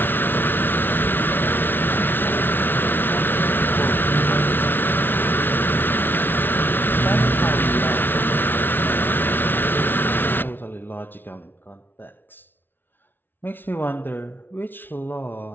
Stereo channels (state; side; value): late; right; 0.098 ms